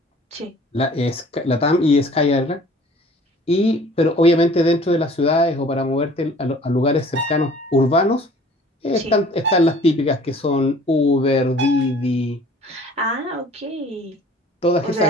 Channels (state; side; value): normal; both; correlation 0.50